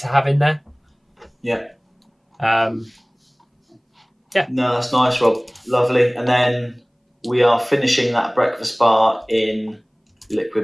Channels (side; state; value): both; identical; correlation 1.00